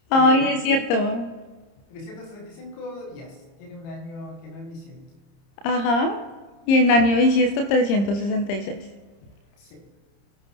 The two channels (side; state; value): right; late; 30 ms